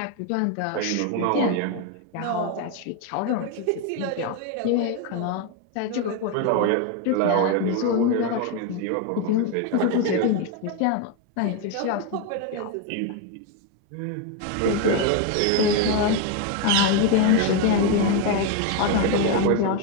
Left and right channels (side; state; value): both; different; correlation 0.02